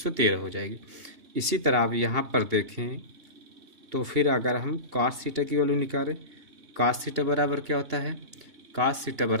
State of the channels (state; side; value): late; left; 2.8 ms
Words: हो जाएगी। इसी तरह आप यहाँ पर देखें तो फिर अगर हम कॉस थीटा की वैल्यू निकालें, कॉस थीटा बराबर क्या होता है, कॉस थीटा